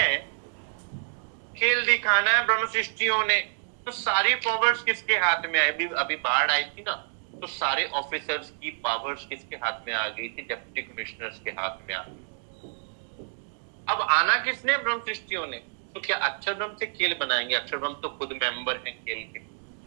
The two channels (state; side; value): silent; left; 59 dB below the other